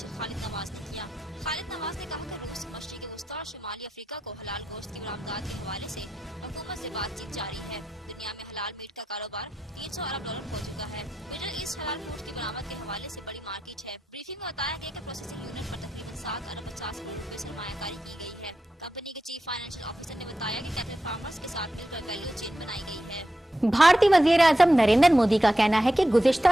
खालिद नवाज ने किया। खालिद नवाज ने कहा कि रूस, मशरिक़ वस्ता और शुमाली अफ्रीका को हलाल गोश्त की बरामदात के हवाले से हुकूमत से बातचीत जारी है। दुनिया में हलाल मीट का कारोबार 300 अरब डॉलर हो चुका है। मिडल ईस्ट हलाल फूड की बरामद के हवाले से बड़ी मार्केट है। ब्रीफिंग में बताया गया कि प्रोसेसिंग यूनिट पर तकरीबन 7 अरब 50 करोड़ रुपए सरमायाकारी की गई है। कंपनी के चीफ फाइनेंशियल ऑफिसर ने बताया कि कैटल फार्मर्स के साथ मिलकर वैल्यू चेन बनाई गई है। भारतीय वज़ीर आज़म नरेंद्र मोदी का कहना है कि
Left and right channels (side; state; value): both; normal; correlation 0.88